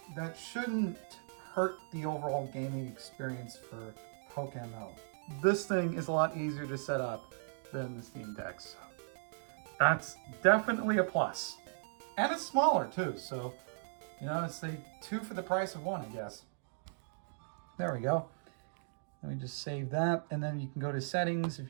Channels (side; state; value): left; silent; digital silence